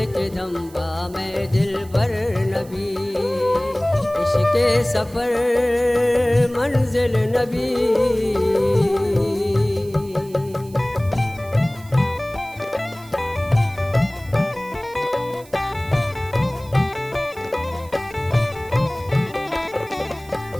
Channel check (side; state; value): right; noise; hiss, 23 dB below the sound